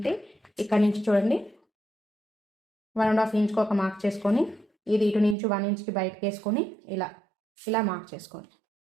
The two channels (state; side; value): drops out; left; at 5.4 s